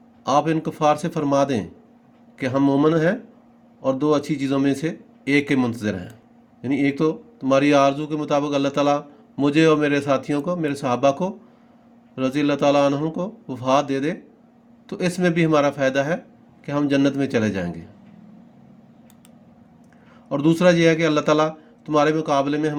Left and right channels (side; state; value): both; identical; correlation 1.00